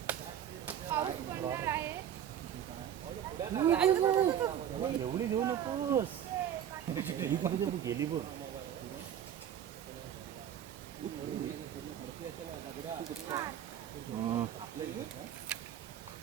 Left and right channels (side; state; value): left; quieter; 9.8 dB